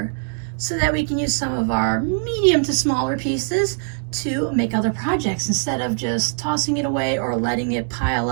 so that we can use some of our medium to smaller pieces to make other projects instead of just tossing it away or letting it pile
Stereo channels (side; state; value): left; silent; digital silence